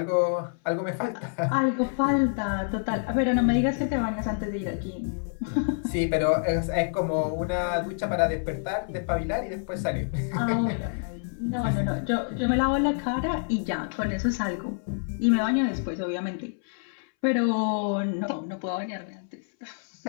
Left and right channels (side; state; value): right; silent; 60 dB below the other